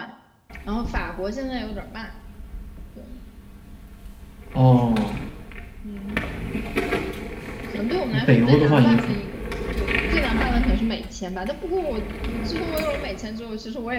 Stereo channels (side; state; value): both; identical; correlation 1.00